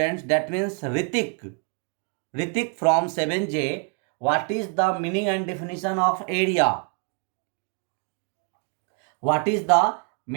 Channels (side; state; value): left; quieter; 37.2 dB